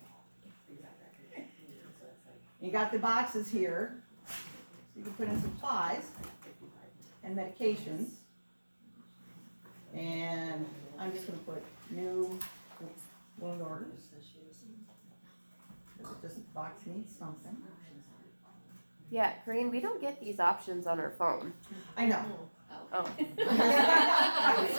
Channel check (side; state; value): both; inverted; correlation -1.00